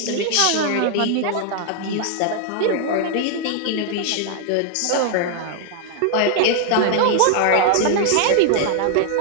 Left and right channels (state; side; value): different; both; correlation 0.00